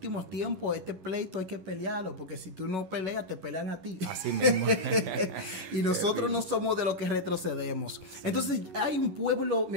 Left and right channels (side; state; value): left; late; 11 ms